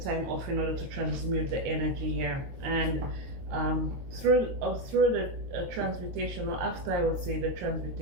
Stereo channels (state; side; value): late; left; 23 ms